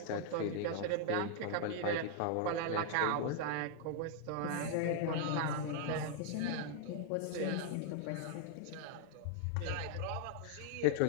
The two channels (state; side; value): different; both; correlation 0.00